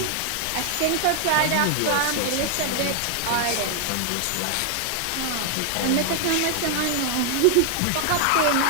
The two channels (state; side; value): different; both; correlation 0.00